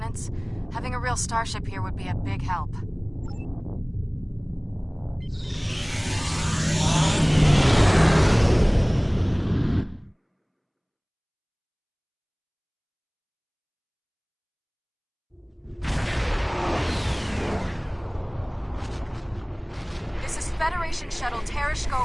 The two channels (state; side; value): identical; both; correlation 1.00